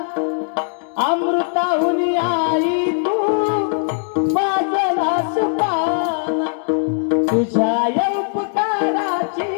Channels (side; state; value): right; silent; digital silence